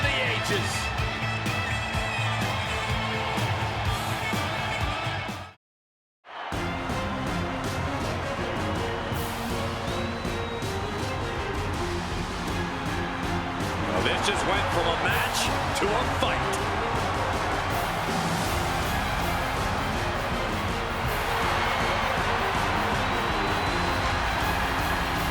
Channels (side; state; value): both; identical; correlation 1.00